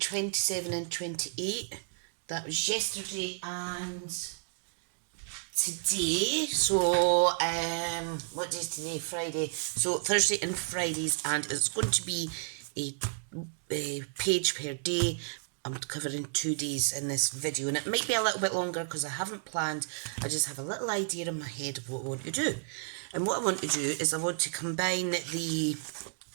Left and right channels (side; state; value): left; silent; digital silence